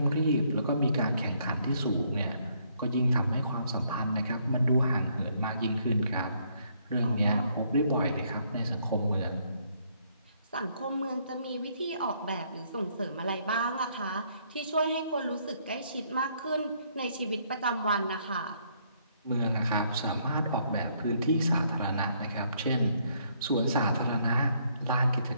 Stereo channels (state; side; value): inverted; both; correlation -0.69